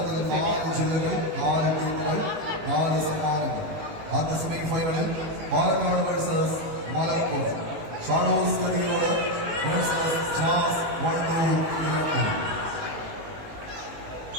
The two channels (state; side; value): late; left; 18 ms